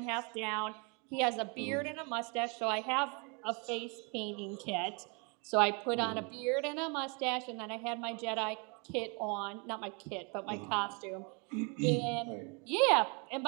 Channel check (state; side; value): quieter; left; 33.4 dB